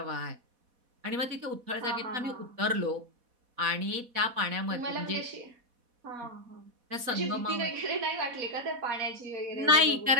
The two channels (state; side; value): late; left; 4.1 ms